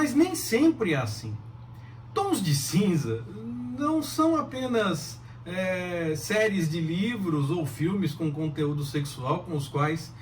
nem sempre é assim. Tons de Cinza não são apenas séries de livros ou filmes com conteúdo sexual com os quais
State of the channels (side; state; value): both; identical; correlation 1.00